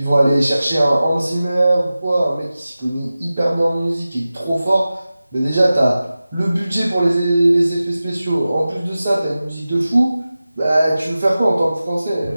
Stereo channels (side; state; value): both; inverted; correlation -0.95